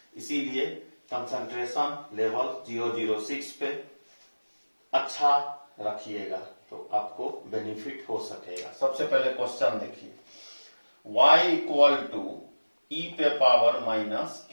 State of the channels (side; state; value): both; inverted; correlation -1.00